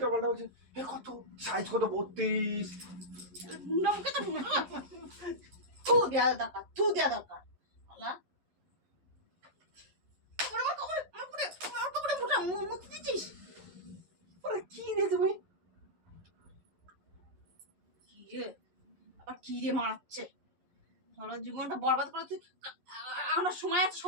পাল্টা বলছিস। কত সাইজ কত 32। নমকে তো থু দেয়া দরকার, থু দেয়া দরকার। আল্লাহ মুতি দিচ্ছিস? ওরে কি রে তুমি? কি রে আবার কি রে মারাচ্ছে? সারা জীবনটা বরবাদ করে তুই। আমার সময় আছে,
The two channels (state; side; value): late; left; 11 ms